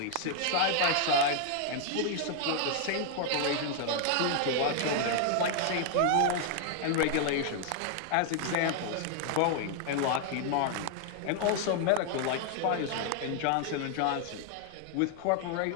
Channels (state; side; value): different; both; correlation 0.00